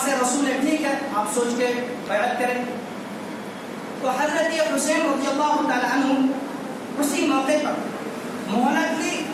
رسول ہے، ٹھیک ہے آپ سوچ کے بیعت کریں. تو حضرت حسین رضی اللہ تعالیٰ عنہ اسی موقع پر مہلت لی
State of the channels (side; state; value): both; identical; correlation 1.00